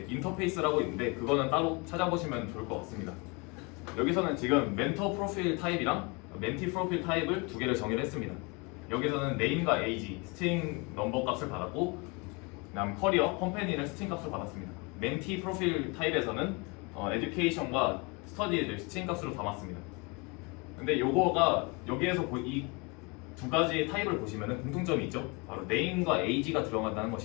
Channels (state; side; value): quieter; right; 28.9 dB